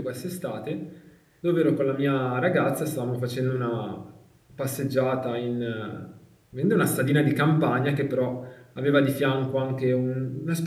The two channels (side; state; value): both; identical; correlation 1.00